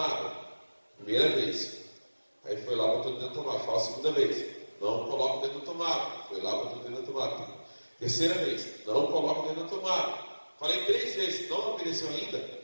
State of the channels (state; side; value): inverted; both; correlation -1.00